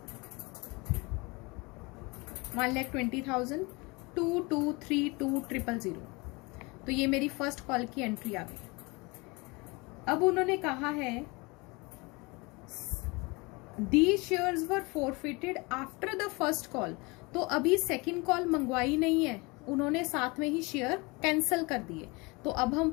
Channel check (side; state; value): right; quieter; 26.3 dB